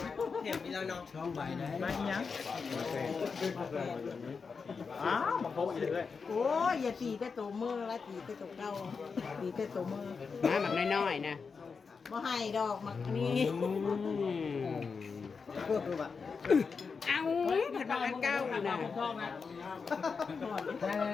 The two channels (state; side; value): quieter; right; 5.2 dB